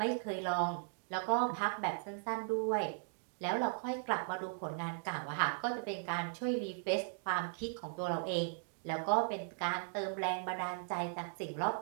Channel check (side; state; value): left; silent; digital silence